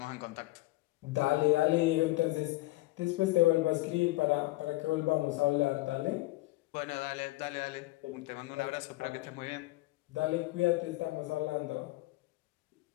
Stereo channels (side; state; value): right; quieter; 19.6 dB